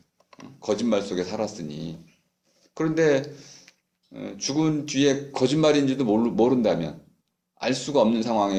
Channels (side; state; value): both; identical; correlation 1.00